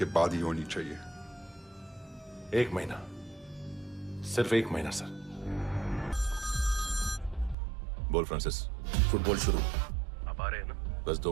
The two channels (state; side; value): drops out; left; at 7.6 s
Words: बाद ही होनी चाहिए। 1 महीना, सिर्फ 1 महीना सर। बोल फ्रांसिस। फुटबॉल शुरू। आप आ रहे हैं ना? बस